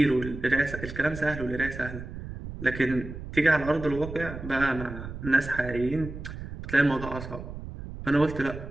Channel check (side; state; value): right; noise; rumble, 10 dB below the sound